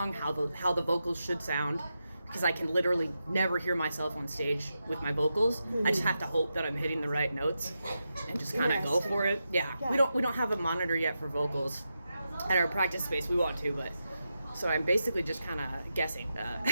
how the vocals should sound. Because I can literally never hear myself on stage with my vocals. Mm-hmm. I just have to hope that I'm hitting the right notes and just kind of go for it. Yeah. We don't have a monitor yet for vocals at our practice space. We want to, but so I'm basically just kind of guessing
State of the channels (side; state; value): both; inverted; correlation -0.88